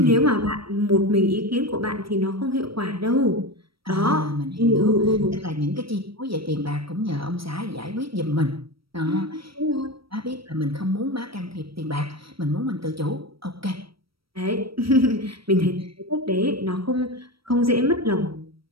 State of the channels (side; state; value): left; late; 0.75 ms